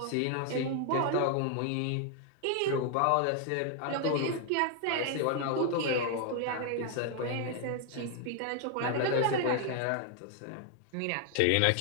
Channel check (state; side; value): different; both; correlation 0.00